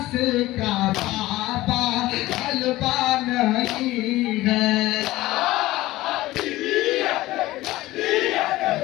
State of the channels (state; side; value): quieter; right; 17.5 dB